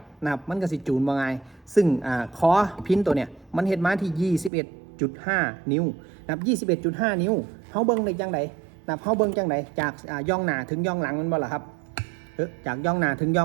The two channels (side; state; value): left; drops out; at 4.5 s